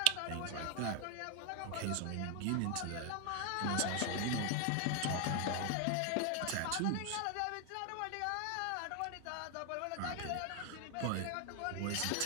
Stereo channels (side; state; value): both; different; correlation 0.01